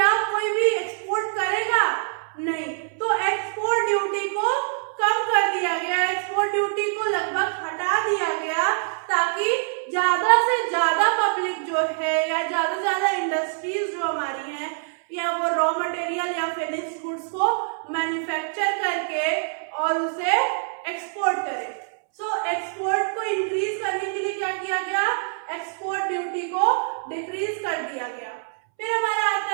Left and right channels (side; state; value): left; silent; 62 dB below the other